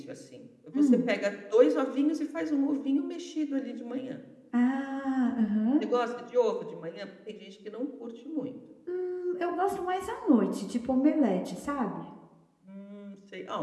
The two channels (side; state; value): both; identical; correlation 1.00